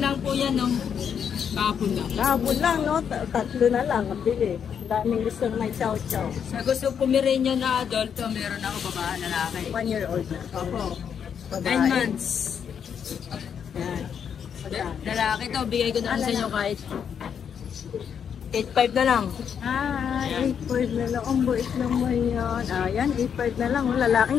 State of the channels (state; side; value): quieter; right; 7.7 dB